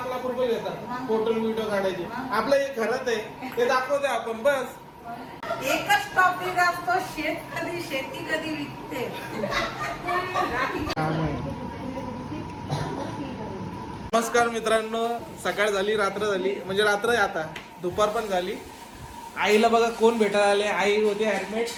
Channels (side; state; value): both; identical; correlation 1.00